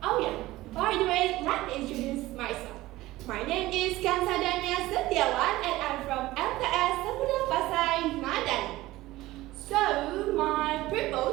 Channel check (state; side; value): quieter; left; 17.6 dB